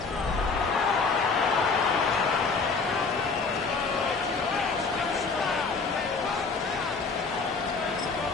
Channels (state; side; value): quieter; right; 4.5 dB